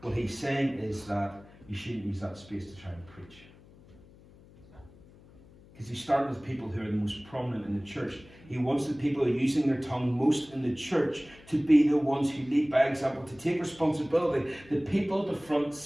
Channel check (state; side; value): noise; left; hum, 24 dB below the sound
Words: What he's saying is that you shouldn't use that space to try and preach. Because he started with people who are the most prominent in the church. He wants the people who are using their tongue most in the church to be the ones who lead by example, to take responsibility. The people at the front